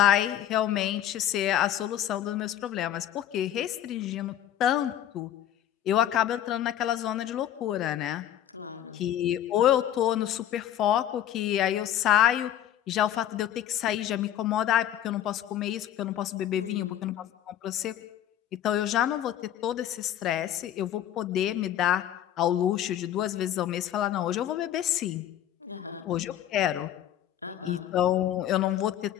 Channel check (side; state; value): right; quieter; 11.2 dB